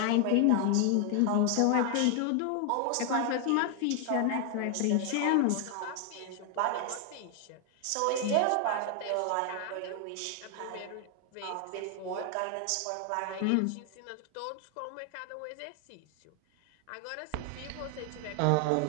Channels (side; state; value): both; different; correlation 0.00